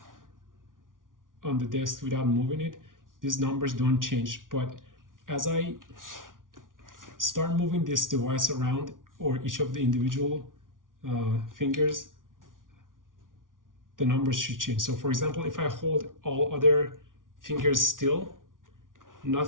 the desk without moving it, these numbers don't change. But as I start moving this device around, or each of the individual fingers, the numbers should change. So for example, if I hold all other fingers still, none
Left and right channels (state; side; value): late; left; 0.89 ms